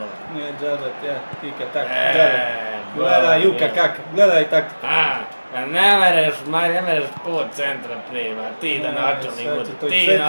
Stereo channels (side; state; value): both; inverted; correlation -1.00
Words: Nije džabat, ja, tika tak, gledaj Juka kak, gledaj taktiku. Ne mereš po centra prima, ti da načelnik bude, ti